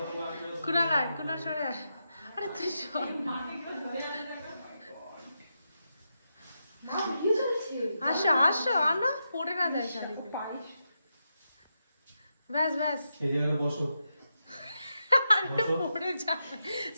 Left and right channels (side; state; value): both; inverted; correlation -0.86